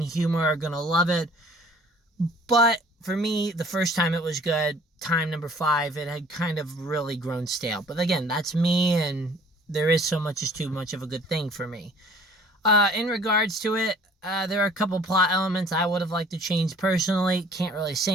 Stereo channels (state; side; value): normal; both; correlation 0.52